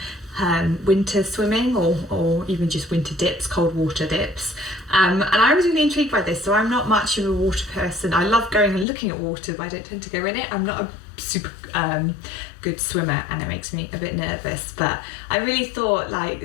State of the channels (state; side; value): drops out; right; at 8.8 s